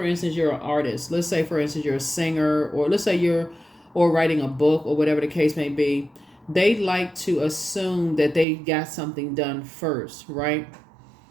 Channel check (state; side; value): drops out; left; at 8.5 s